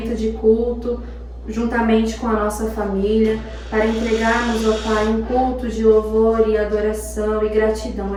de culto juntamente com a nossa família, para entregarmos, ó Pai, um culto de louvor e adoração e gratidão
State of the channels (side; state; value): both; identical; correlation 1.00